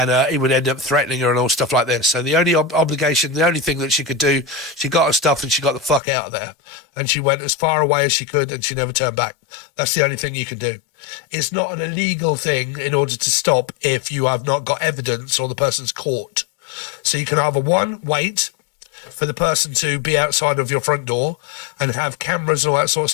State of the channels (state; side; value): drops out; right; at 6.0 s